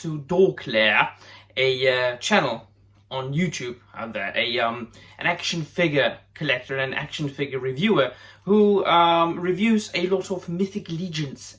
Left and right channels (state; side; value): identical; both; correlation 1.00